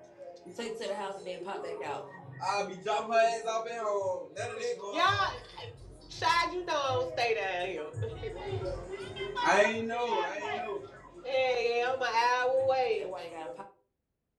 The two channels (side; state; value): both; identical; correlation 1.00